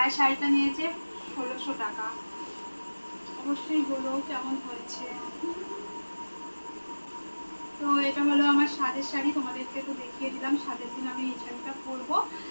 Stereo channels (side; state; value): both; inverted; correlation -1.00